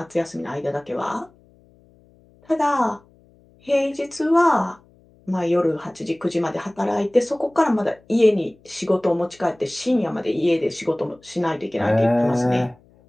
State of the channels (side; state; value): left; noise; hum, 30 dB below the sound